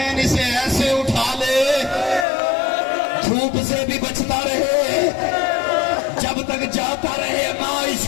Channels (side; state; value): right; drops out; at 2.2 s